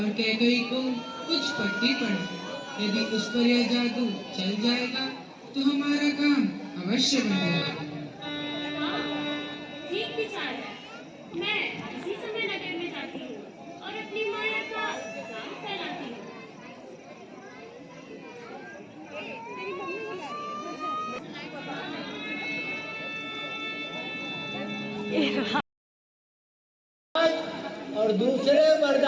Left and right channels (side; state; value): both; identical; correlation 1.00